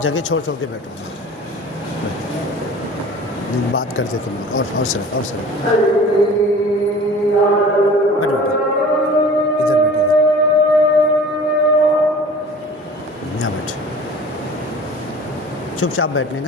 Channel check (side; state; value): both; normal; correlation 0.43